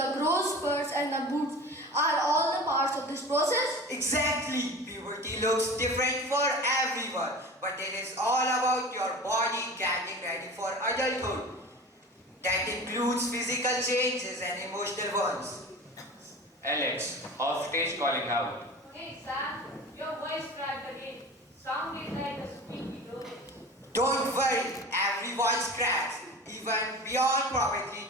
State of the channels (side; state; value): both; normal; correlation 0.36